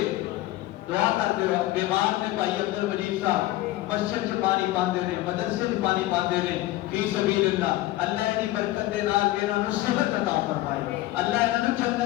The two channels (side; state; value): right; quieter; 16.7 dB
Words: دعا کرتے ہو بیمار نے بھائی عبد المجید صاحب مسجد چ پانی پاندے نے مدرسے چ پانی پاندے نے فی سبیل اللہ اللہ دی برکت دے نال انہاں نوں صحت عطا فرمائے اللہ انہاں نوں